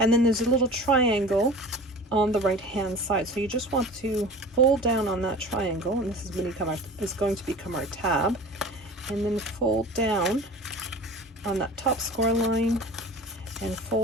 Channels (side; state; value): both; normal; correlation 0.39